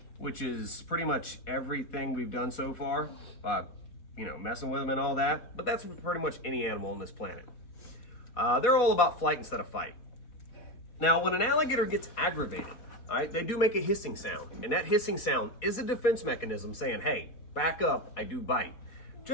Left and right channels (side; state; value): right; late; 4.1 ms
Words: which is pretty much everything we've done so far, messing with them and all that, but that's pretty much any animal on this planet. They're all about flight instead of fight. Now, when an alligator gets aggravated, all right, they do make a hissing sound, and that hissing sound is a defense mechanism saying, hey, back up, I do bite.